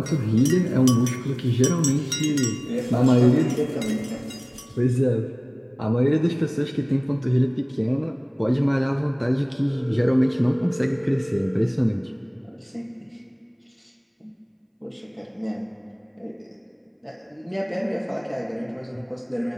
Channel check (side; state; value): both; identical; correlation 1.00